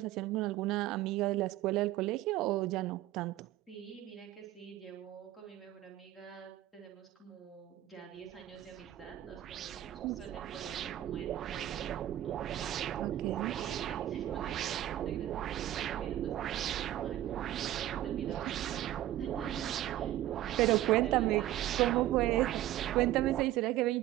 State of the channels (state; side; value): quieter; left; 13.7 dB